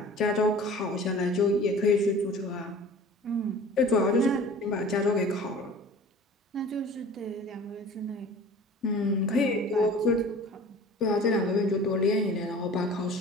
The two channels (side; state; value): both; normal; correlation 0.43